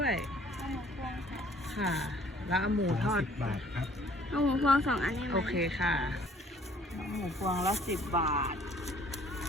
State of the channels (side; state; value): both; normal; correlation 0.57